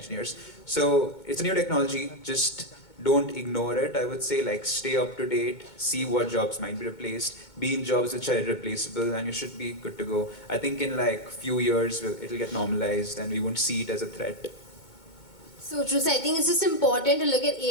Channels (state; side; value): late; right; 2.2 ms